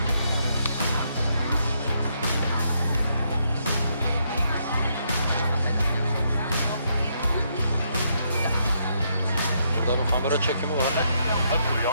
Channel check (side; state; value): both; inverted; correlation -0.76